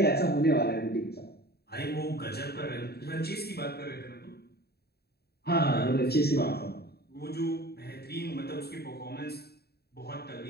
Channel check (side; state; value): right; late; 0.46 ms